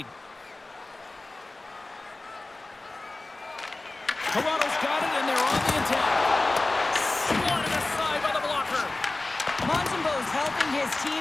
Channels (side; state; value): right; quieter; 3.0 dB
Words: Toronto's got it, and they're on the attack. Swatted aside by the blocker. Montembeau's helping his team